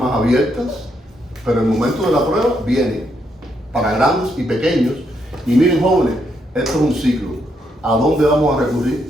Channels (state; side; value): normal; both; correlation 0.77